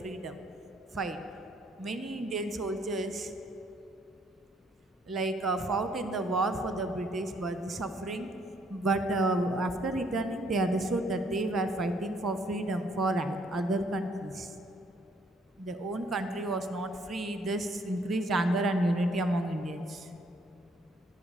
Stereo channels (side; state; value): both; normal; correlation 0.66